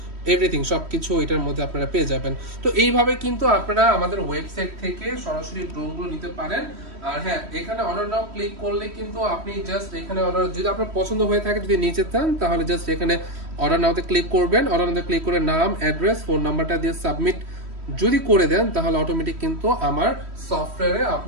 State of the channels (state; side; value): late; left; 3.1 ms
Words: এভরিথিং সবকিছু এটার মধ্যে আপনারা পেয়ে যাবেন। তো এইভাবে কিন্তু আপনারা আমাদের ওয়েবসাইট থেকে সরাসরি ড্রোনগুলো নিতে পারেন। আর হ্যাঁ, এখানে অর্ডার নাও ক্লিক করলে কিন্তু আপনি জাস্ট এখানে অর্ডার, যদি আপনার পছন্দ হয়ে থাকে, যদি নিচে চান, তাহলে জাস্ট এখানে অর্ডার নাওতে ক্লিক করবেন। অর্ডার নাওতে ক্লিক করে নাম, অ্যাড্রেস, ফোন নাম্বারটা দিয়ে সাবমিট যদি করে দেন, তাহলে অটোমেটিক কিন্তু আমার সফটওয়্যারে